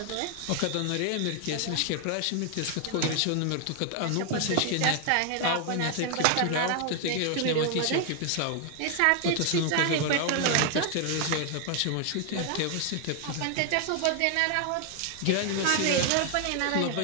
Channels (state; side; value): different; both; correlation 0.00